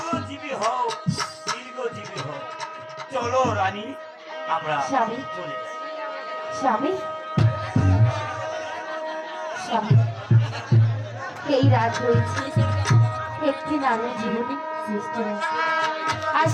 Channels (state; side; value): identical; both; correlation 1.00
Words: হও, দীর্ঘজীবী হও। চলো রানী, আমরা স্বামী। চলে যাই। স্বামী, স্বামী, এই রাত রয়েছে একটি নারীর জীবনে সৃষ্ট হয়েছে, আর